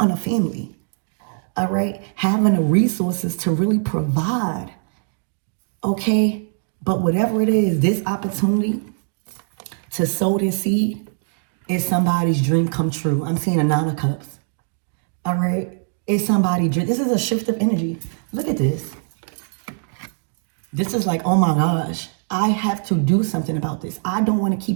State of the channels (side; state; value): left; silent; digital silence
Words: a family, all right, having the resources to really provide, okay? But whatever it is, this opportunity to sow this seed is somebody's dream come true. I'm seeing a 9 of cups, all right? It's somebody's dream. This is a shift of energy. Look at this. This is like, oh my gosh, I have to do something about this. I don't want to